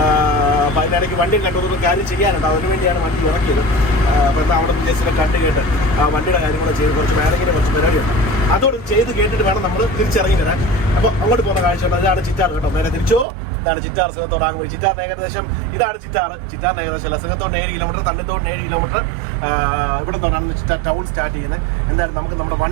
അപ്പോൾ അതിനിടയ്ക്ക് വണ്ടിയും കണ്ടൊരു കാര്യം ചെയ്യാനുണ്ട്. അതിനുവേണ്ടിയാണ് വണ്ടി ഇറക്കിയത്. അപ്പോൾ എന്താ അവിടെ ജസ്റ്റ് കണ്ട് കേട്ട് ആ വണ്ടിയുടെ കാര്യങ്ങൾ ചെയ്ത് കുറച്ച് വേണമെങ്കിലും കുറച്ച് പരിപാടിയുണ്ട്. അതോട് ചെയ്ത് കേട്ടിട്ട് വേണം നമ്മൾ തിരിച്ചിറങ്ങി വരാൻ. അപ്പോൾ അങ്ങോട്ട് പോകുന്ന കാഴ്ചയുണ്ട്. അതാണ് ചിറ്റാർ കേട്ടോ. നേരെ തിരിച്ചോ. ഇതാണ് ചിറ്റാർ. സിഹത്തോടാകുമ്പോൾ ചിറ്റാറിന് ഏകദേശം ഇതാണ് ചിറ്റാറിന് ഏകദേശം അല്ല, സിഹത്തോടിന് 7 കിലോമീറ്റർ, തണ്ണിത്തോടിന് 7 കിലോമീറ്റർ. ഇവിടെ നിന്നാണ് ചിറ്റാർ ടൗൺ സ്റ്റാർട്ട് ചെയ്യുന്നത്. എന്തായാലും നമുക്ക് നമ്മുടെ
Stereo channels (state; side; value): drops out; left; at 13.2 s